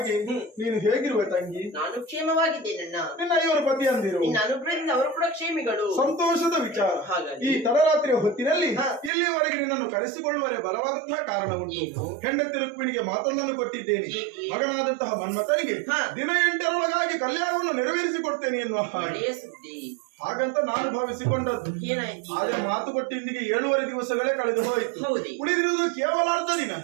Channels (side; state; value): left; drops out; at 9.1 s